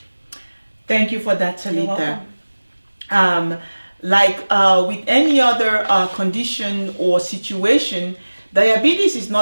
Thank you for that, Talita. You're welcome. With any other condition or situation, diabetes is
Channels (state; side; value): inverted; both; correlation -1.00